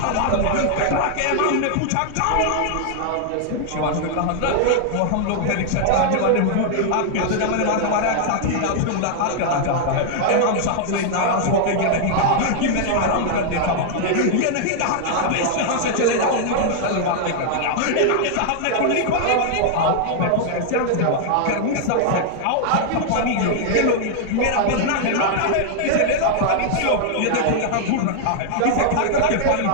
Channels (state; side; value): different; both; correlation -0.01